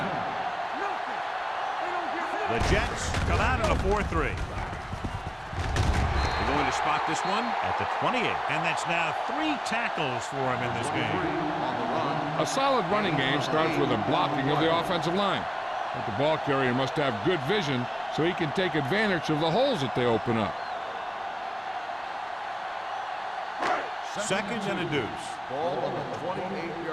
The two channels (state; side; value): identical; both; correlation 1.00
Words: The Jets come out in a 4-3. They're going to spot this one at the 28. And that's now 3 tackles for him in this game. A solid running game starts with a blocking of the offensive line. But the ball carrier must have good vision so he can take advantage of the holes that they open up. Second and a deuce. Ball on the